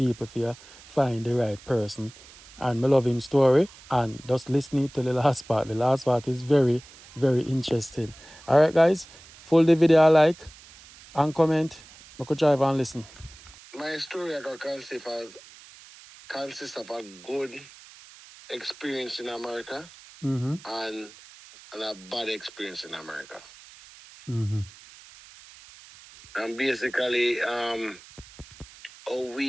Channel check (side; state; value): right; noise; hiss, 21 dB below the sound